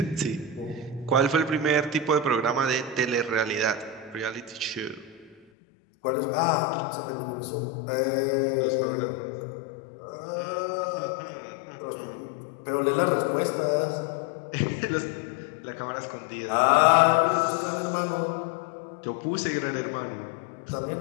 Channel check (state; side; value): drops out; right; at 5.4 s